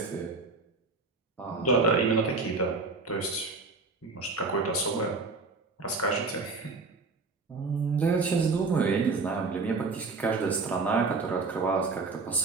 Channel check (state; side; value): quieter; left; 3.9 dB